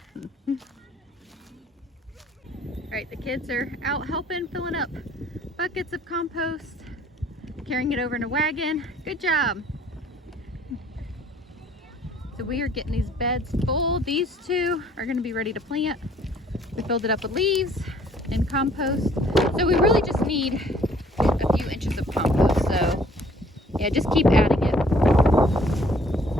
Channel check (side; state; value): both; normal; correlation 0.58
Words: All right, the kids are out helping, filling up buckets of compost, carrying it over in a wagon. Good job. So we are getting these beds full. These two are gonna be ready to plant. We filled it up with leaves and compost. So we really just need a few inches of compost. So yeah, just keep adding it.